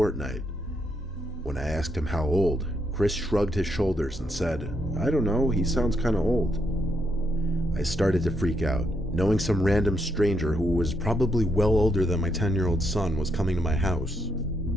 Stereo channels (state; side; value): normal; both; correlation 0.77